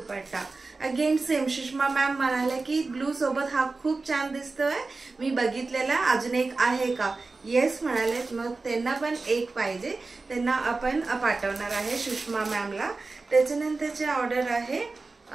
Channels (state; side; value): quieter; left; 3.7 dB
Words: again same. Sushma ma'am म्हणाले की ब्लू सोबत हा खूप छान दिसतोय, मी बघितलेला, अजून एक आहे का? येस म्हणाले, मग त्यांना पण एक पाहिजे, त्यांना आपण पाठवणार आहे सुषमा मॅमला। त्याच्यानंतरचे ऑर्डर आहे